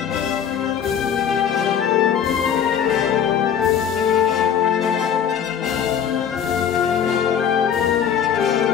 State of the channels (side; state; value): right; quieter; 8.4 dB